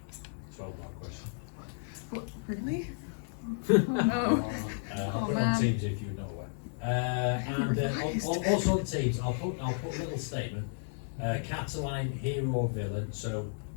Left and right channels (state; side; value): silent; right; digital silence